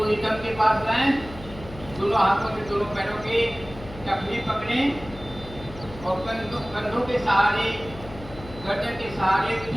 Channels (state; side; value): noise; left; hum, 15 dB below the sound